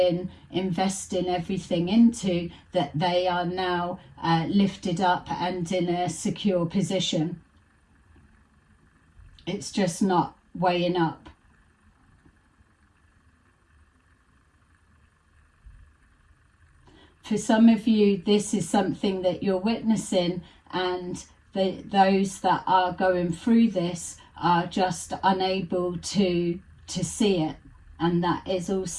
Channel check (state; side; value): identical; both; correlation 1.00